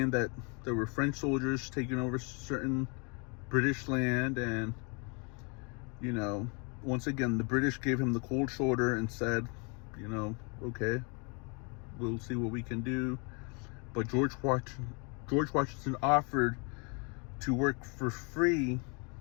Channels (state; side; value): quieter; right; 34.1 dB